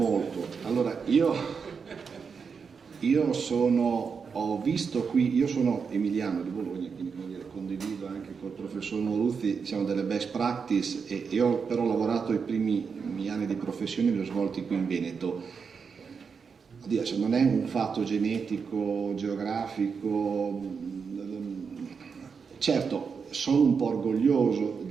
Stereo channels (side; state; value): left; quieter; 5.8 dB